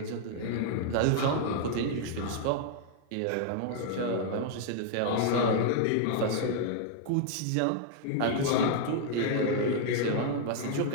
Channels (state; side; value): different; both; correlation -0.01